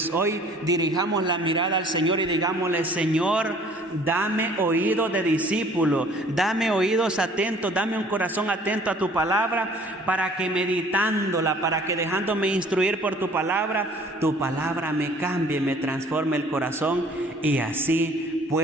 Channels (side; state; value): both; normal; correlation 0.53